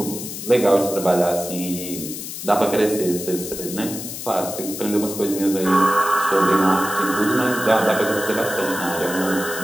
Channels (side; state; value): left; noise; hiss, 8 dB below the sound